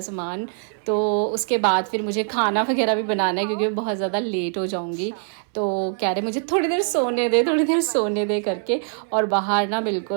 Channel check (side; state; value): left; silent; 63 dB below the other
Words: सामान, तो उसके बाद फिर मुझे खाना वगैरह भी बनाना है क्योंकि मैं बहुत ज़्यादा लेट हो जाऊँगी। तो कह रहे मुझे थोड़ी देर सोने दे, थोड़ी देर सोने दे करके। और बाहर ना